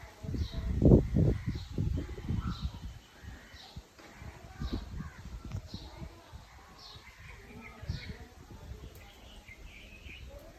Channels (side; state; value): both; identical; correlation 1.00